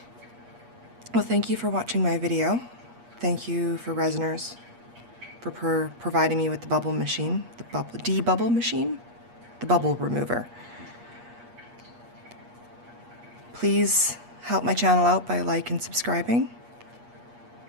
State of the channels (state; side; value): late; left; 8.4 ms